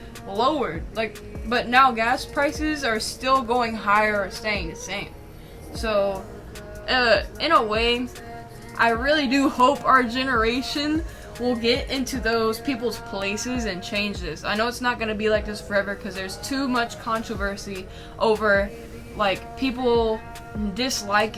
lowered. Like, but now gas prices are still going higher or staying the same. So, in a way, I really do hope our generation will get into those people's places and change this. I know it's not going to be like this forever because there's too much controversy over, like, people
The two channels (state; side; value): identical; both; correlation 1.00